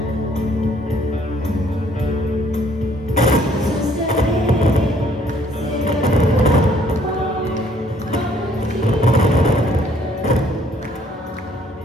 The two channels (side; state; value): both; normal; correlation 0.63